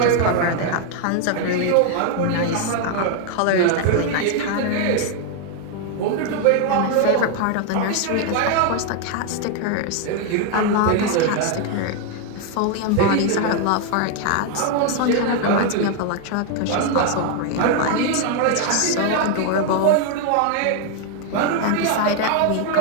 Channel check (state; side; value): different; both; correlation 0.00